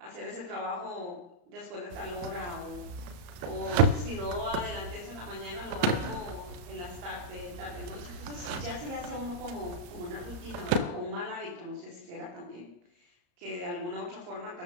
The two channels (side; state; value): left; late; 34 ms